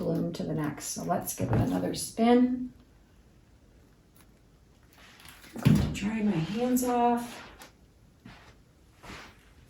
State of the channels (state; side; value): identical; both; correlation 1.00